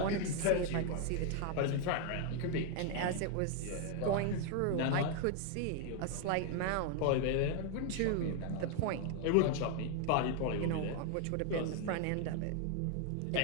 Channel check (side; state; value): both; different; correlation 0.00